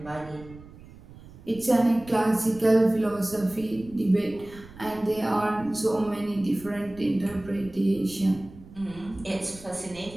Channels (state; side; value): noise; right; rumble, 19 dB below the sound